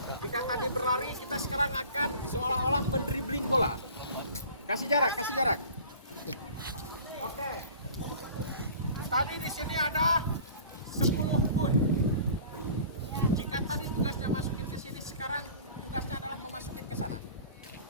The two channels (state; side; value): inverted; both; correlation -0.45